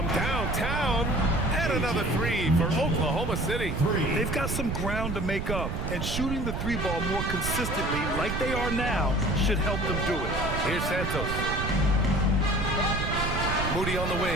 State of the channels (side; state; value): right; noise; rumble, 3 dB below the sound